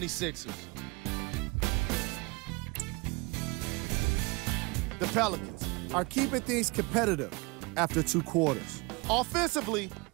The Pelicans are keeping things competitive after 2 quarters. Offensively,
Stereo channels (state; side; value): quieter; left; 26.7 dB